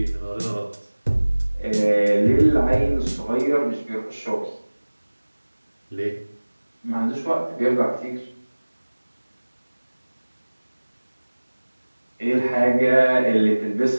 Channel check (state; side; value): inverted; both; correlation -1.00